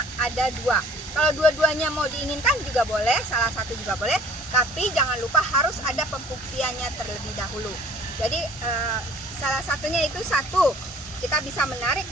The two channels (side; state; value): both; normal; correlation 0.52